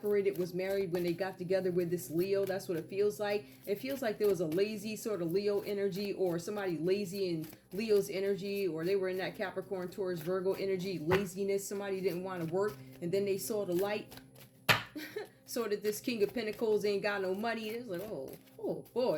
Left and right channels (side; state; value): both; identical; correlation 1.00